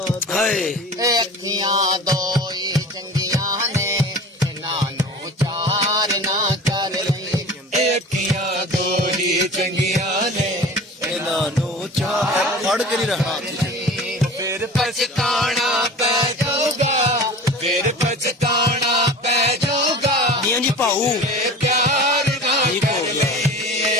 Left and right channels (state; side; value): normal; both; correlation 0.38